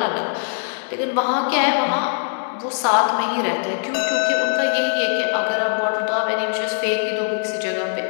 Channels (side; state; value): right; silent; digital silence